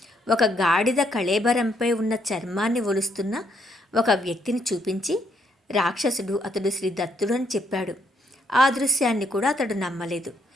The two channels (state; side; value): normal; both; correlation 0.73